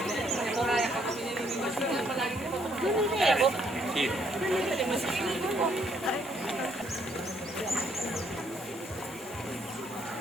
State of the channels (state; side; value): normal; both; correlation 0.69